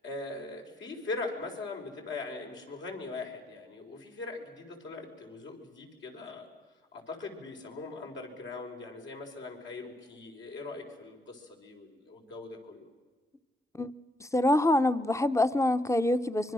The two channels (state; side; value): normal; both; correlation 0.76